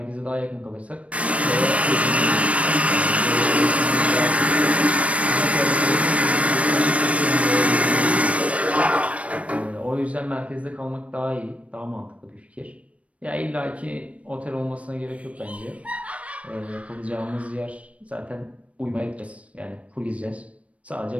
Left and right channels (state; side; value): late; left; 0.064 ms